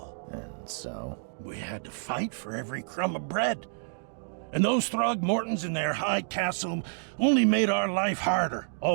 And so? We had to fight for every crumb of bread. And those Throgmortons in their high castle only made our life harder,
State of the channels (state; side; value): silent; left; digital silence